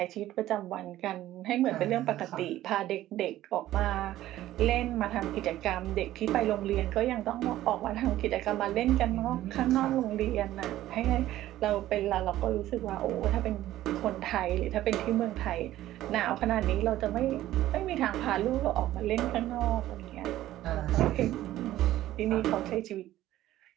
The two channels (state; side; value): quieter; left; 14.3 dB